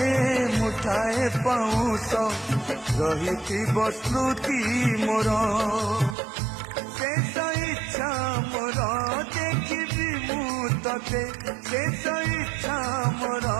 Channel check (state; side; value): drops out; left; at 6.2 s